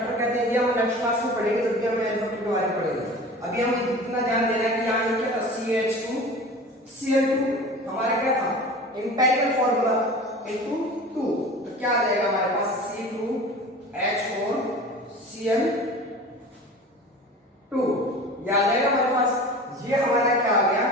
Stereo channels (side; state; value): both; normal; correlation 0.38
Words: कहते हैं। ये हम नेक्स्ट क्लास में पढ़ेंगे जब भी हम n फैक्टर के बारे में पढ़ेंगे। अभी हम इतना ध्यान देना है कि यहाँ ये क्या था, CH2Cl2 हमारा क्या था, एम्पिरिकल फॉर्मूला इनटू 2, तो क्या आ जाएगा हमारे पास C2H4Cl2, ये आ जाएगा हमारे पास। ये हमारा क्या आ गया,